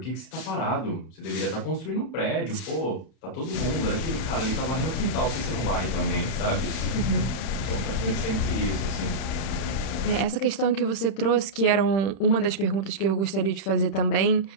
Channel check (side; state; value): right; late; 31 ms